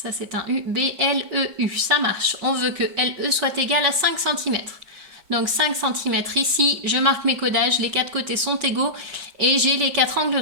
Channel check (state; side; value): late; left; 5.4 ms